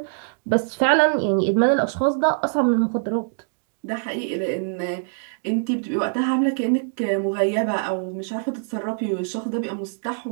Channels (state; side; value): silent; left; digital silence